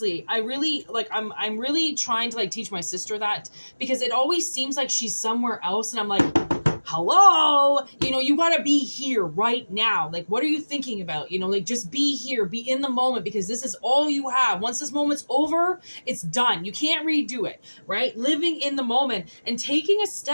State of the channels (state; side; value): inverted; both; correlation -1.00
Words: I really like, I'm really trying to like teach my sister that because it always seems like she's somewhere else. And I'm like, hello, you got to be here right now. Like, what are you thinking about? Like, just be here, be in the moment, because this is all you have. Once this moment's over, it's done. You can't redo it, right? Living in the moment and taking a